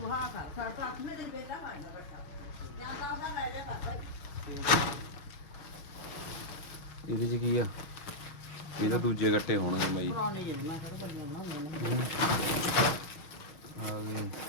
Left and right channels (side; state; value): right; late; 6.4 ms